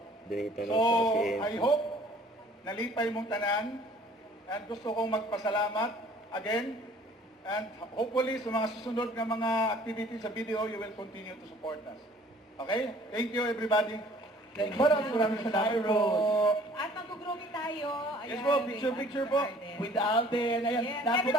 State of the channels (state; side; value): normal; both; correlation 0.54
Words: Donate na So, sa si I AMC. hope nalipay mong tanan and gusto kong magpasalamat again and hopefully sa mga susunod na mga activities sa video, you will continue to support us. Okay? Thank you everybody. Thank you. Maraming salamat po. At mag-grooming tayo. Ayan, Yes po, picture po. With Alden. Ayan, Yes, dapat